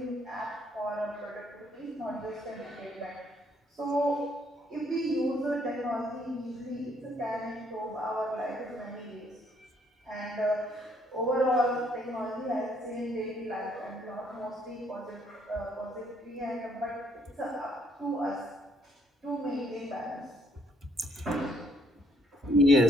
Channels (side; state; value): both; normal; correlation 0.68